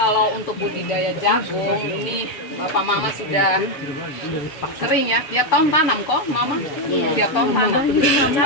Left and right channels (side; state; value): right; late; 6.9 ms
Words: untuk budidaya jagung ini bapak mama sudah sering ya, tiap tahun tanam kok mama? Tiap tahun tanam.